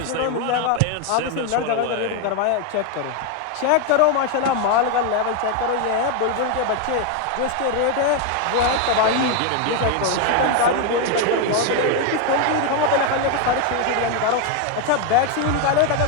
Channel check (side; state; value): both; different; correlation 0.01